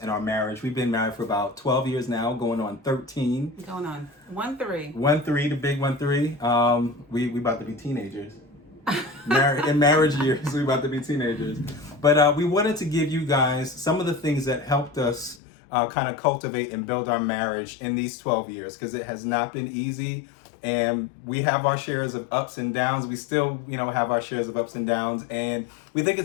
our marriage. We've been married for about 12 years now, going on 13. Going on 1-3. 1-3, the big 1-3. We about to be teenagers. In marriage years, we about to be teenagers. But we wanted to give you guys some of the things that helped us kind of cultivate and build our marriage in these 12 years, because it has not been easy. And we have our shares of ups and downs. We still, have our shares of ups and downs. And we think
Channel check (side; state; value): right; drops out; at 15.4 s